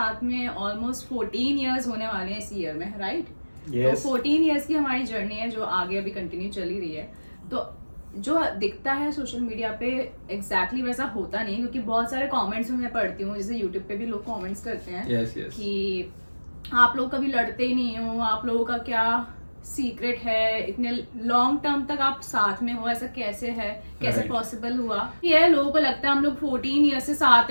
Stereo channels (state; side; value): inverted; both; correlation -1.00